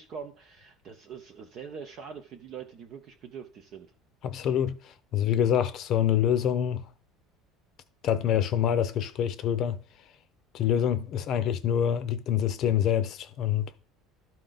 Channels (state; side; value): quieter; right; 9.0 dB